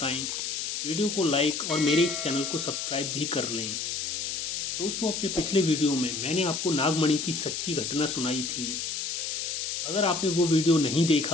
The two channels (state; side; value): noise; left; hiss, 3 dB below the sound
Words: वीडियो को लाइक और मेरे इस चैनल को सब्सक्राइब भी कर लें। दोस्तों, अपने पिछले वीडियो में मैंने आपको नागमणि की सच्ची घटना सुनाई थी। अगर आपने वो वीडियो नहीं